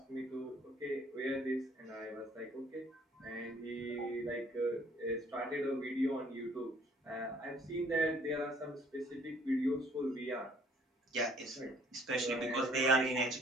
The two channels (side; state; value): both; normal; correlation 0.59